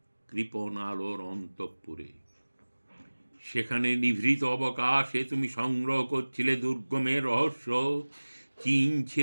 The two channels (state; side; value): inverted; both; correlation -1.00